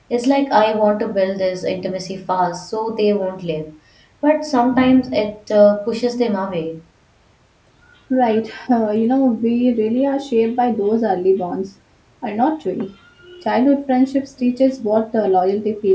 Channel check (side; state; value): both; identical; correlation 1.00